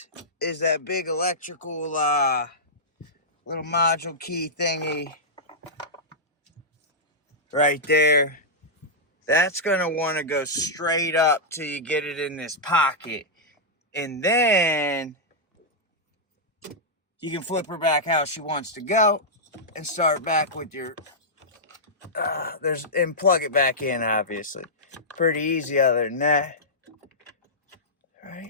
that big electrical little module key thingy right there. That's gonna want to go straight up till you get it in this pocket, and then you can flip her back how she wants to go and start back with your and plug it back in. Obviously, pretty easy other than that,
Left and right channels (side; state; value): both; normal; correlation -0.11